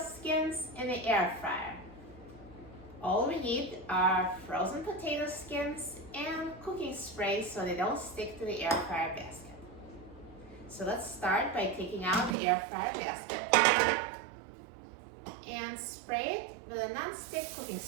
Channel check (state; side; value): drops out; left; at 12.4 s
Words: in the air fryer. All we need are frozen potato skins and cooking spray so they don't stick to the air fryer basket. So let's start by taking out the air fryer basket and spray it with a non-stick cooking